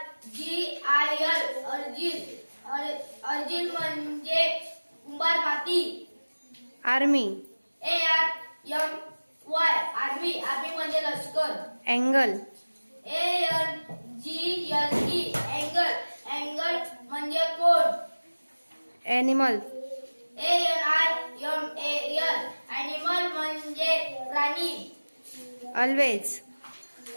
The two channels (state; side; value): inverted; both; correlation -1.00